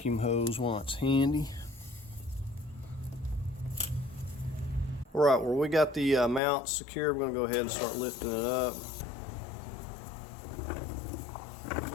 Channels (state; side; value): drops out; right; at 6.4 s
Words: hose while it's handy. Alright, well, we got the mount secure. We're going to go ahead and start lifting it up.